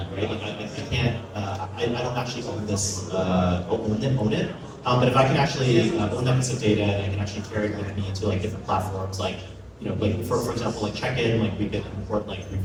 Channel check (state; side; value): identical; both; correlation 1.00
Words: right? Like, I can't, I don't actually own this, own it. But if I can actually own that piece of data and I can actually carry it with me to like different platforms, like, you know, like for example, like Checkin, like we could import like